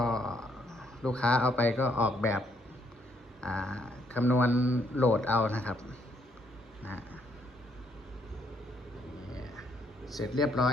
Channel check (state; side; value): normal; both; correlation 0.71